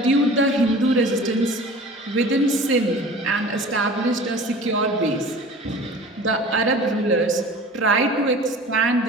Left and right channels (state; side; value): normal; both; correlation 0.41